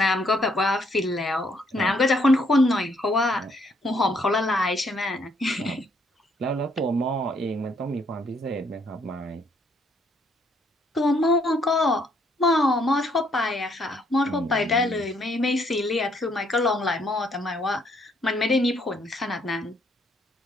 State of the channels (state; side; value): normal; both; correlation 0.69